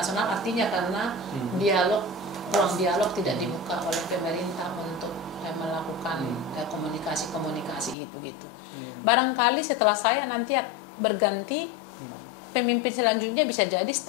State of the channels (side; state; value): right; drops out; at 8.0 s